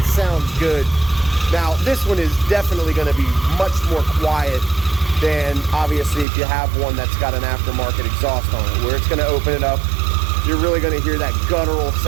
Sounds good. Now, this one is definitely going to be much more quiet than, obviously, if you have one that's got an aftermarket exhaust on it, where it's going to open it up. You're really going to hear that guttural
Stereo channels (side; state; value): left; drops out; at 6.2 s